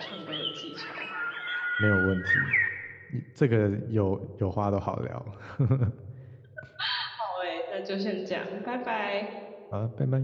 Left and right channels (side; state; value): both; identical; correlation 1.00